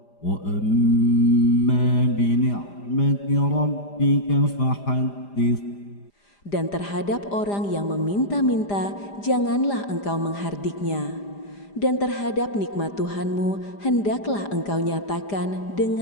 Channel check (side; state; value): right; late; 5.0 ms